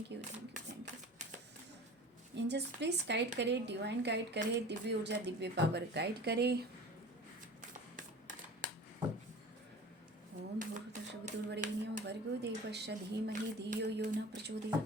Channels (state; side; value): normal; both; correlation 0.39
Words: you thank you thank you. Angels please guide करे, डिवाइन गाइड करे, दिव्य ऊर्जा दिव्य पावर गाइड करे। ओम भूर्भुवस्सुर्वरेण्यं भर्गो देवस्य धीमहि धियो यो न प्रचोदयात्।